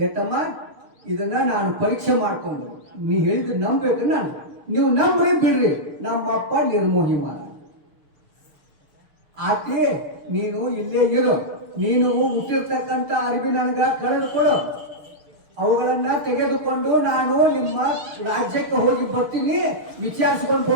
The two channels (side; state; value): left; late; 6.6 ms